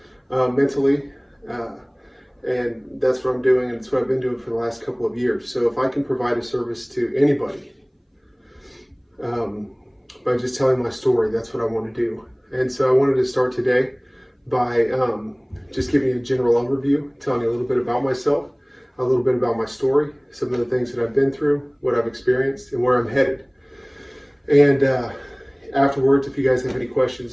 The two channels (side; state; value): both; identical; correlation 1.00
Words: mentally, and that's what I'm doing, and it's what I've been doing for the last couple of years. So if I can provide a service to anybody by just telling my story, that's what I want to do. And so I wanted to start today by just giving you a general overview, telling you a little bit about myself, a little bit about my story, some of the things that I've been through, what I've experienced, and where I'm headed. And afterwards, if you guys have any